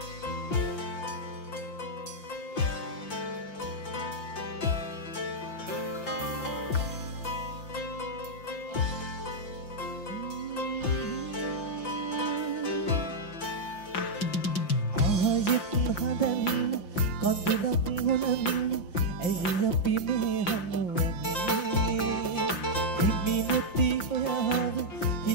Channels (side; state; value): right; late; 5.8 ms